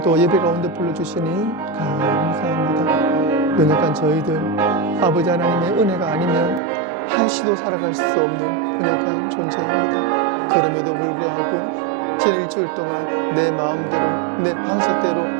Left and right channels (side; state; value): left; drops out; at 6.6 s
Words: 예배 가운데 불러주시니 감사합니다. 연약한 저희들 아버지 하나님의 은혜가 아니면 한시도 살아갈 수 없는 연약한 존재입니다. 그럼에도 불구하고 지난 일주일 동안 내 마음대로, 내 방식대로,